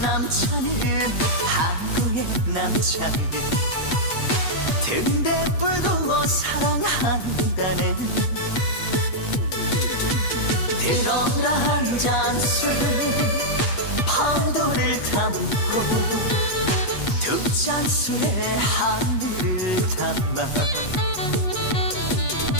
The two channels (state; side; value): late; right; 8.3 ms